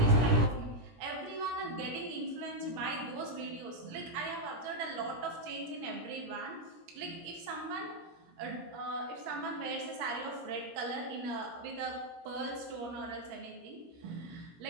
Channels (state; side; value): late; left; 17 ms